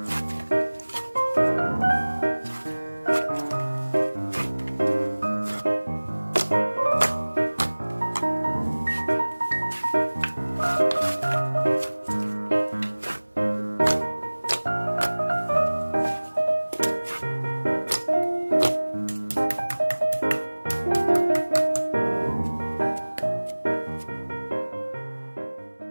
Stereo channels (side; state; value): both; inverted; correlation -1.00